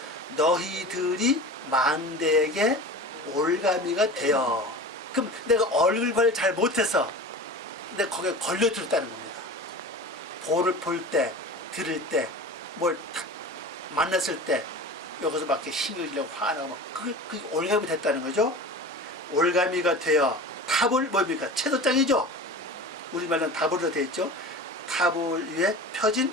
너희들이 망대에게 올가미가 되어. 그럼 내가 얼굴 관리 잘 못해서 내가 거기에 걸려들었다는 겁니다. 볼을 볼 때, 들을 때, 뭘 탁 만났을 때 여기서 막 이렇게 신경질내고 화나고 막 그게 올가미 됐다는 거죠. 올가미가 되어 탑을 뭡니까? 채도장이죠. 우리말로는 탑으로 되어 있죠. 탑을 위에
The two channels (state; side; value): normal; both; correlation 0.35